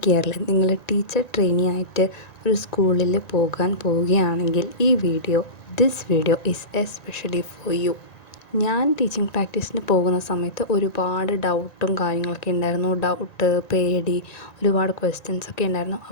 ഇയറിൽ നിങ്ങൾ ടീച്ചർ ട്രെയിനി ആയിട്ട് ഒരു സ്കൂളിൽ പോകാൻ പോവുകയാണെങ്കിൽ this video is especially for you. ഞാൻ ടീച്ചിങ് പ്രാക്ടീസിന് പോകുന്ന സമയത്ത് ഒരുപാട് ഡൗട്ടും കാര്യങ്ങളൊക്കെ ഉണ്ടായിരുന്നു. പേടി, ഒരുപാട് ക്വസ്റ്റ്യൻസൊക്കെ ഉണ്ടായിരുന്നു.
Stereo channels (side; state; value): right; late; 1.9 ms